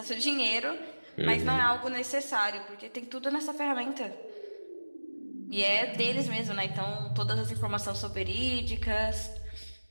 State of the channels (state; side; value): inverted; both; correlation -1.00